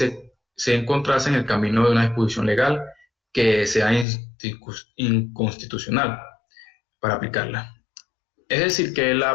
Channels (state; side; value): drops out; right; at 4.0 s